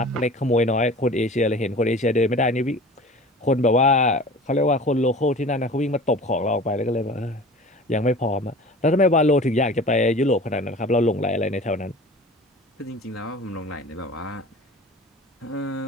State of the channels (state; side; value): normal; both; correlation 0.40